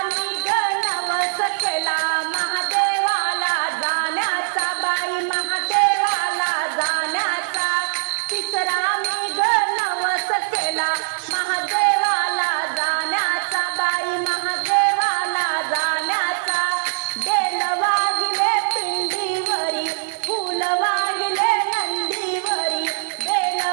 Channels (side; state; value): left; silent; digital silence